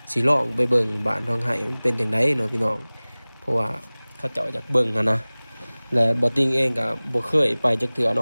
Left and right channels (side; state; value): both; inverted; correlation -1.00